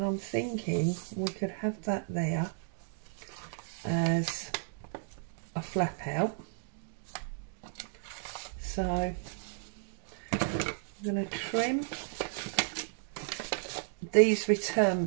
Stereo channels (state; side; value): silent; left; digital silence